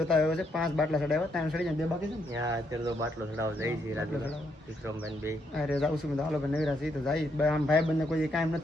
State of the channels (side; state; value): both; normal; correlation 0.76